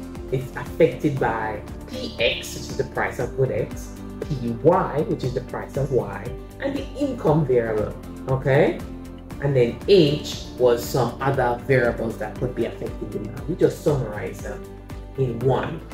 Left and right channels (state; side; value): identical; both; correlation 1.00